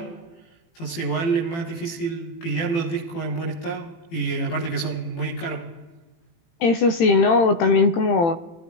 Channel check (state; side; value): late; right; 18 ms